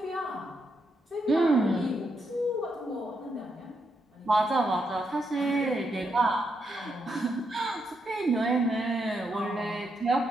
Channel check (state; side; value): normal; both; correlation 0.81